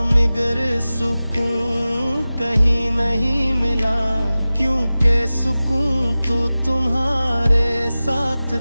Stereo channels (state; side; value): inverted; both; correlation -0.97